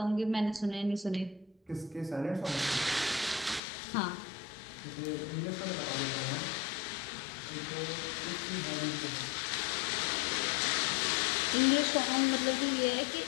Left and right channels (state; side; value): drops out; right; at 3.6 s